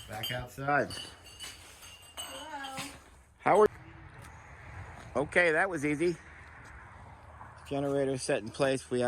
Back outside. Hello. How are you? Okay, that was easy. Generator set in place. We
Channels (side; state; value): both; identical; correlation 1.00